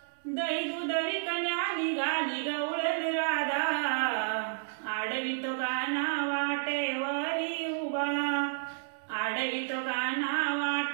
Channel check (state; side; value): silent; left; digital silence